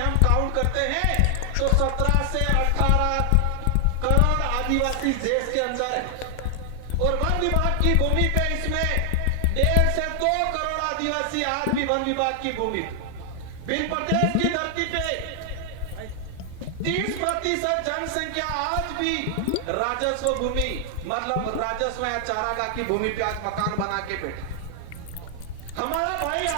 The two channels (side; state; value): both; different; correlation 0.00